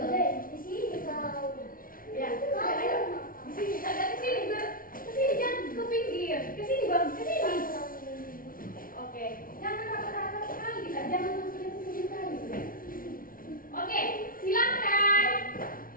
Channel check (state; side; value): late; right; 0.41 ms